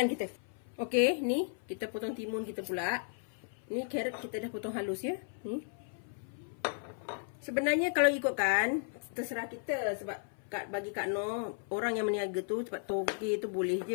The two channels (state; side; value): silent; right; 55 dB below the other